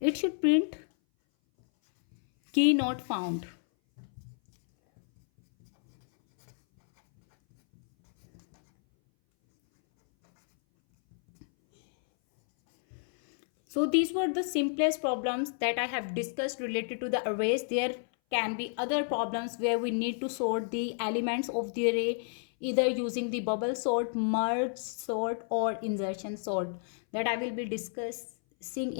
should print key not found. So these were the simplest problems that I have discussed related to the arrays. There can be other problems where we need to sort the elements of the array either using the bubble sort, merge sort, or insertion sort, that I will be discussing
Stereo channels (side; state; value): right; silent; 57 dB below the other